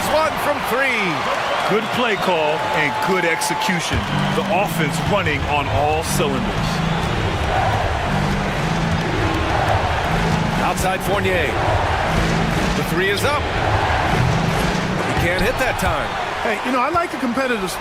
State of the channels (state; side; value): identical; both; correlation 1.00